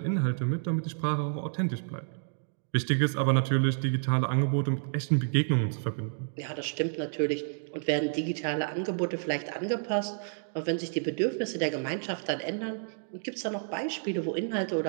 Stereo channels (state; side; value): silent; left; digital silence